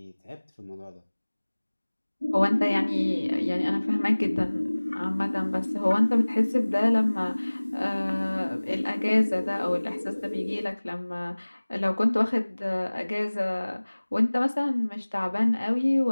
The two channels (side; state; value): both; inverted; correlation -1.00